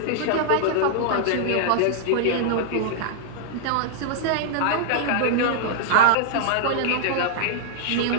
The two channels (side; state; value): both; different; correlation -0.01